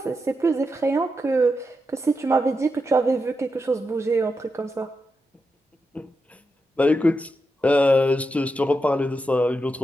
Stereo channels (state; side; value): normal; both; correlation 0.87